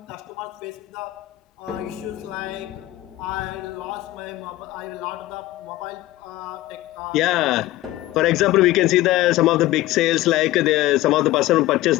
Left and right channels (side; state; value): right; quieter; 16.6 dB